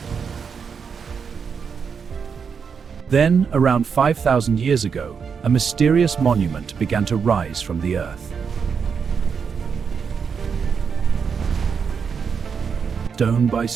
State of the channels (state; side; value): quieter; left; 6.3 dB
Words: Then, around 5,000 years ago, a mysterious monument began to rise from the earth. Stone by